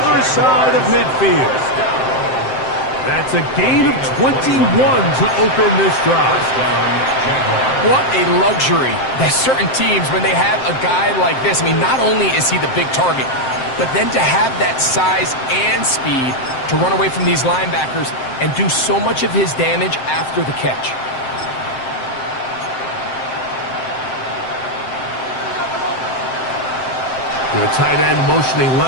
side of midfield. That's a gain of 21 to open this drive. What a luxury. There's certain teams, when they have a guy like this, I mean, not only is he the big target, but then to have that size and speed to run away from these linebackers and do so much of his damage after the catch. The tight end motioning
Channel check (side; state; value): right; late; 7.7 ms